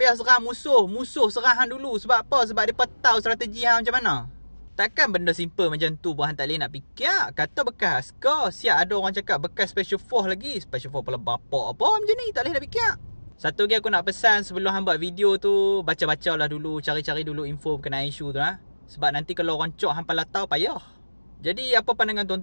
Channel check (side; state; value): both; inverted; correlation -1.00